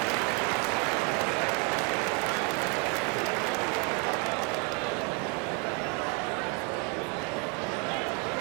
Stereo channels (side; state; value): left; quieter; 34.9 dB